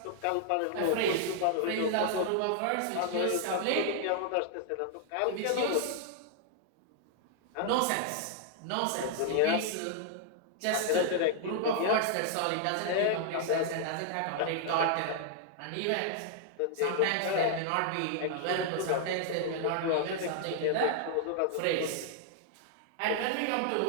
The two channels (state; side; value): different; both; correlation -0.01